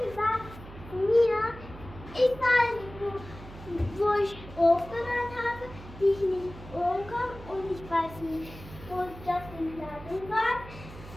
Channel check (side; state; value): right; noise; hum, 15 dB below the sound